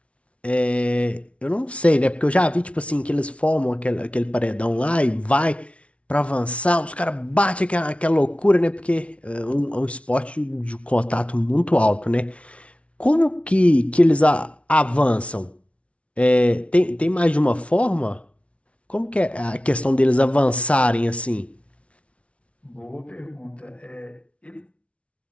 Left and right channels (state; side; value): late; right; 0.062 ms